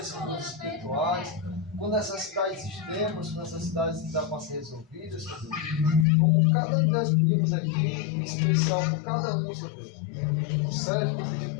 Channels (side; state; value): right; drops out; at 6.1 s